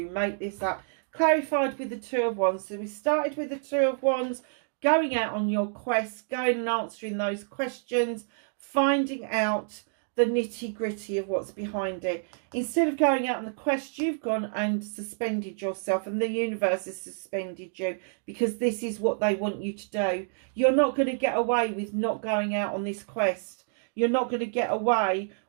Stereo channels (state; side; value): silent; left; digital silence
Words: make this up? Clarified with the Two of Wands. So we started with the Two of Wands, going out on your quest, going and answering those questions, finding out the nitty-gritty of what's behind it. Instead of going out on the quest, you've gone and suspended yourself, and the universe has suspended you because this is what they want you to do. You're not going to get away with not going out on this quest. You're not going to get away